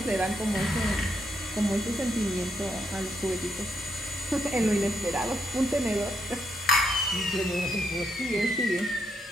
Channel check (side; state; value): both; normal; correlation 0.79